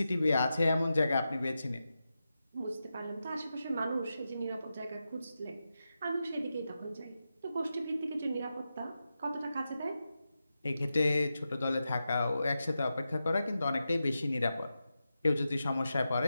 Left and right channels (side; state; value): both; inverted; correlation -0.90